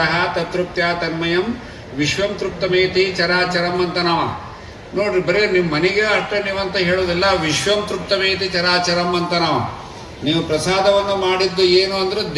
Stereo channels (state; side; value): identical; both; correlation 1.00